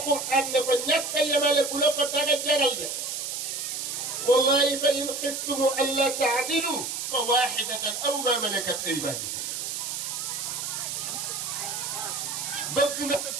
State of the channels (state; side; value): noise; right; hiss, 4 dB below the sound